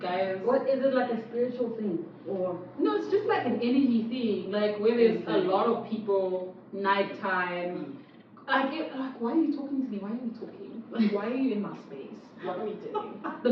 What is it, like a spiritual thing or? No, it's just like an energy thing. Like where there's a lot of people, nighttime. Like why are you talking to me? Why are you talking? Like why are you in my space? What are we doing? The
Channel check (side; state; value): both; identical; correlation 1.00